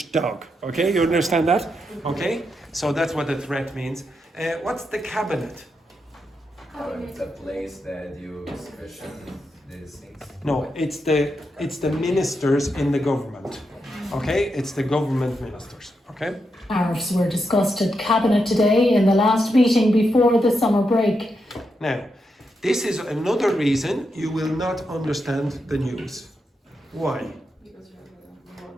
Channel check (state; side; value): normal; both; correlation 0.84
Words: dog. Okay, you understand that? Okay, so that's what the threat means. What's the cabinet? It's a place that you discussion these things. No, it's the ministers in the government. Okay, it's the government ministers. Okay. Tariffs were discussed at Cabinet today in the last meeting before the summer break. Now, this is another reason you will not understand the news. Why?